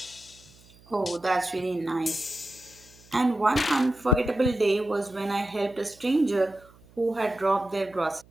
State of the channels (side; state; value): right; noise; hum, 26 dB below the sound